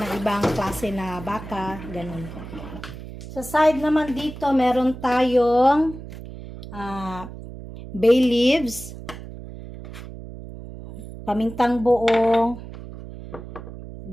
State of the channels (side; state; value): right; noise; hum, 13 dB below the sound